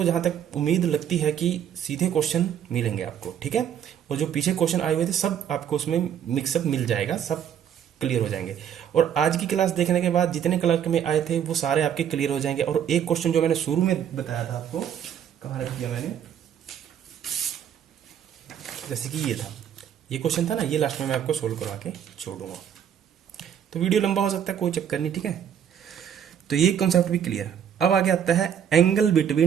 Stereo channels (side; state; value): left; quieter; 9.0 dB